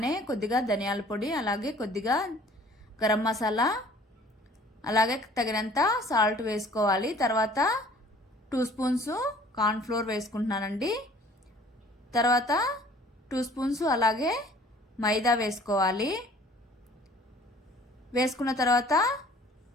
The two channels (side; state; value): both; normal; correlation 0.52